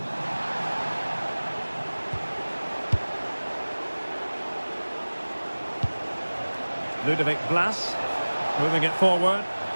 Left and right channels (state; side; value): inverted; both; correlation -1.00